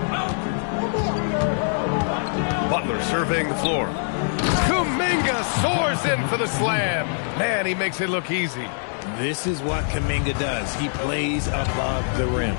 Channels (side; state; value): right; silent; digital silence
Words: Butler surveying the floor. Kuminga soars in for the slam. Man, he makes it look easy. This is what Kuminga does. He plays above the rim.